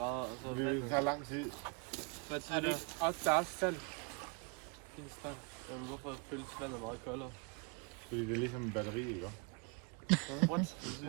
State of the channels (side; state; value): left; quieter; 33.5 dB